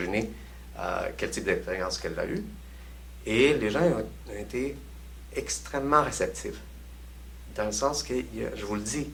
quel type d'expérience qu'elle a eue. Et les gens ont été extrêmement réceptifs. Dans le sens que, je vous le dis,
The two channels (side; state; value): both; identical; correlation 1.00